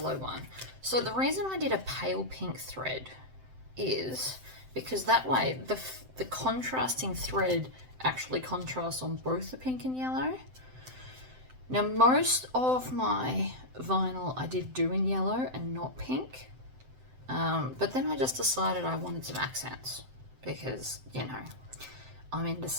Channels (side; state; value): left; late; 7.8 ms